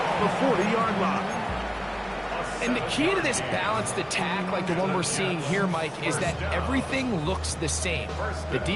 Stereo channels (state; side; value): identical; both; correlation 1.00